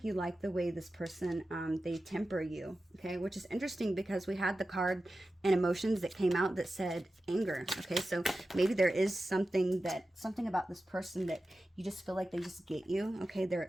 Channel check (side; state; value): both; normal; correlation 0.93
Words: you like the way this person, they temper you, okay? Which is interesting because we had the card and emotions that came out that said anger, okay? So maybe there is something about this person that you just feel like they just get you, okay? There